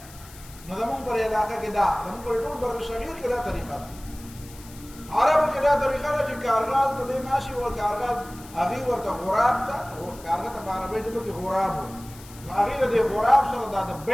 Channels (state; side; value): noise; left; hiss, 20 dB below the sound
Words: نو زمونږ پر علاقه کې دا زمونږ پر ټول بر صغیر کې دا طریقه ده. عربو کې دا طریقه ده چې کارغال ته دی ناشي و کارغال هغې ورته غراب ته کارغه ته په عربۍ ژبه کې غراب و. نو هغې د دې غراب سره دا د